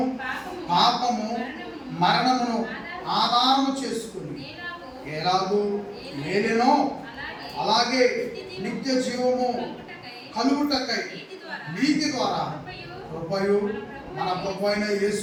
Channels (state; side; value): identical; both; correlation 1.00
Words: పాపము మరణమును ఆధారము చేసుకుని ఎలాగూ ఏలెనో అలాగే నిత్య జీవము కలుగుటకై నీతి ద్వారా కృపయు మన ప్రభు అయిన